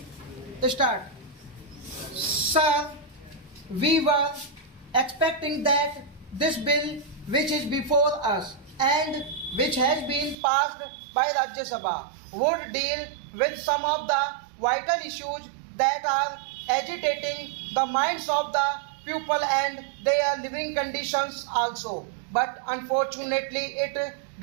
start. Sir, we were expecting that this bill which is before us and which has been passed by Rajya Sabha would deal with some of the vital issues that are agitating the minds of the people and their living conditions also. But unfortunately, it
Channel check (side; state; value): left; drops out; at 10.4 s